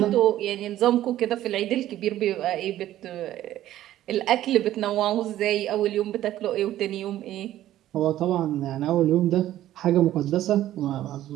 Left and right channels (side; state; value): left; quieter; 13.4 dB